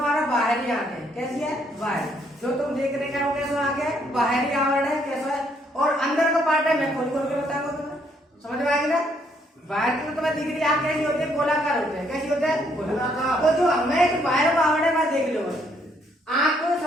बाहरी आंख है। कैसी है? बाहर। जो तुम देख रहे हैं वो कैसा आंख है? बाहरी आवरण है। कैसा है? और अंदर का पार्ट है मैं खोल खोल के बताऊंगा तुम्हें, समझ में आएगी ना। बाहर की तो तुम्हें दिख रही आंख कैसी होती है? गोलाकार होते हैं। कैसी होते हैं? गोलाकार। तो जो हमें बाहर का आवरण है मैं देख लो। आंख को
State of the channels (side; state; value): both; normal; correlation 0.70